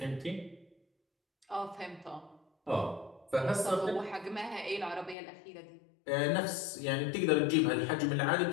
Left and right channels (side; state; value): right; drops out; at 5.2 s